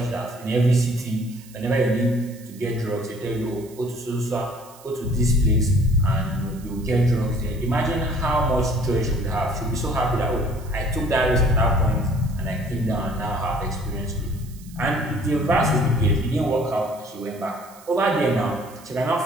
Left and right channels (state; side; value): noise; right; hiss, 23 dB below the sound